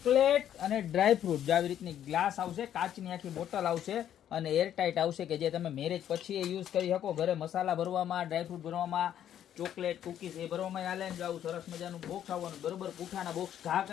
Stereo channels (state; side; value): quieter; right; 10.5 dB